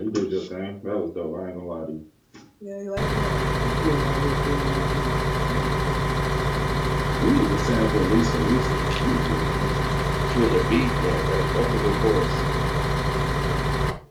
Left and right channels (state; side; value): identical; both; correlation 1.00